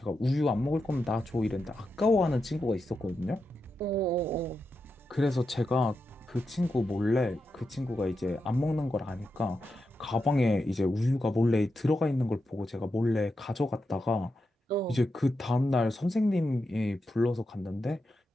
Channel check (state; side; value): normal; both; correlation 0.87